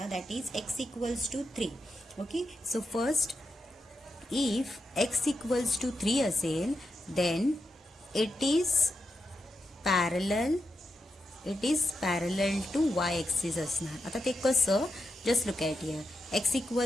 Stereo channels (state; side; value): normal; both; correlation 0.87